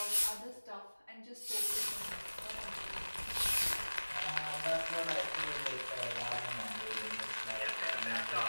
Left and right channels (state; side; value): inverted; both; correlation -1.00